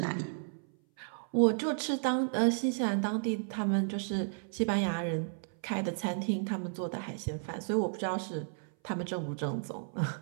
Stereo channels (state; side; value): silent; left; 56 dB below the other